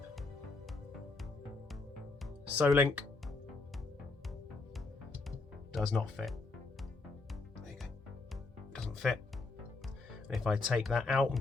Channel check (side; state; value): right; quieter; 3.7 dB